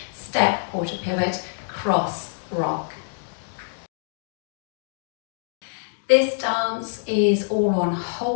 step, quarter pivot, cross, rock. This dance is all on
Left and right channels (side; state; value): right; silent; digital silence